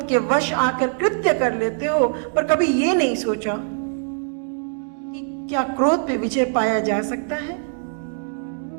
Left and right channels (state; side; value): silent; left; 62 dB below the other